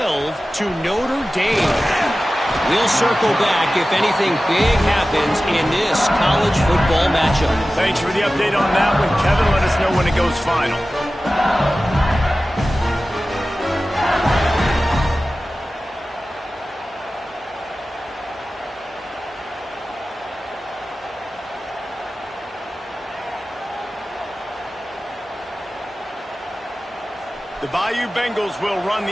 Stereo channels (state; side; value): normal; both; correlation 0.95